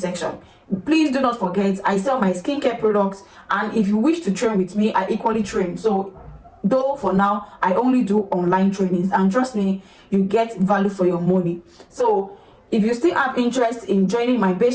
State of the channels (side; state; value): both; identical; correlation 1.00